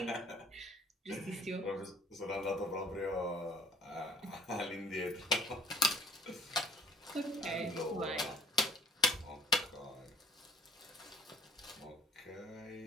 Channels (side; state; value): both; normal; correlation 0.56